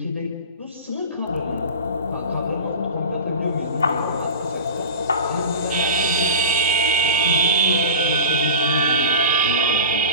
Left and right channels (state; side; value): inverted; both; correlation -0.32